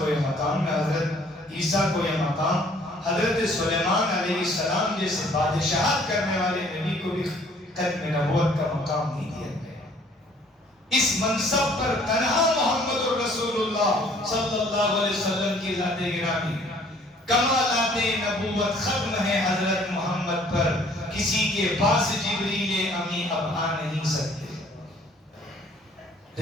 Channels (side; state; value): both; normal; correlation 0.57